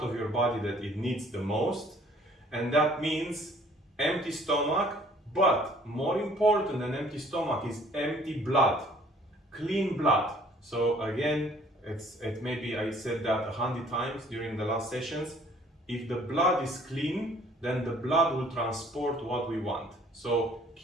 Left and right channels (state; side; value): normal; both; correlation 0.57